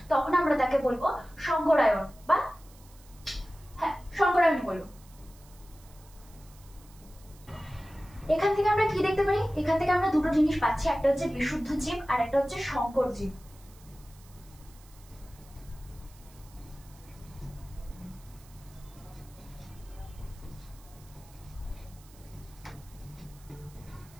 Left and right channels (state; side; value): noise; right; hiss, 25 dB below the sound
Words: তখন আমরা তাকে বলবো সংকরায়ন, বা হ্যাঁ সংকরায়ন বলবো। এখান থেকে আমরা কি দেখতে পারি? এখান থেকে আমরা দুটো জিনিস পাচ্ছি, একটা হচ্ছে বিশুদ্ধ জীব আর একটা হচ্ছে সংকর জীব।